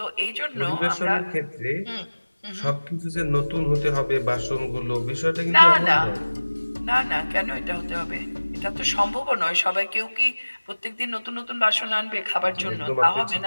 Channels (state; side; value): inverted; both; correlation -1.00